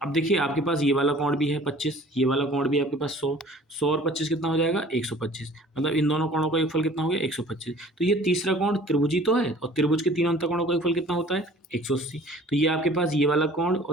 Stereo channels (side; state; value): both; normal; correlation 0.49